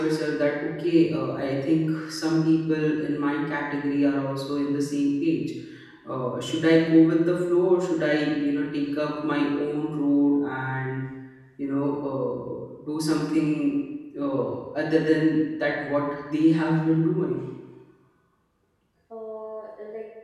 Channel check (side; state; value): both; identical; correlation 1.00